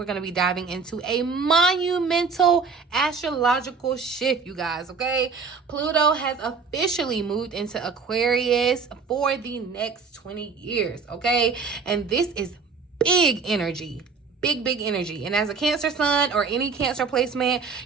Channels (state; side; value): quieter; left; 5.1 dB